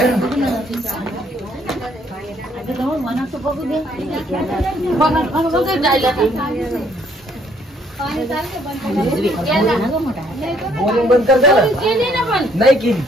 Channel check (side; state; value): both; normal; correlation 0.66